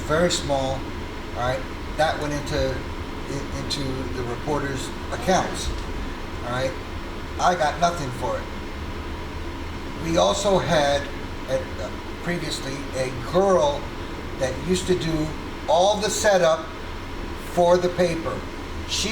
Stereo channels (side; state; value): both; identical; correlation 1.00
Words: very small, all right? That went into the reporters' accounts, all right? I got nothing for it. We also had previously a girl that used to do all the setup for the paper.